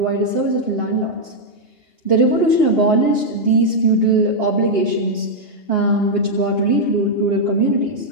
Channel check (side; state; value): right; late; 2.8 ms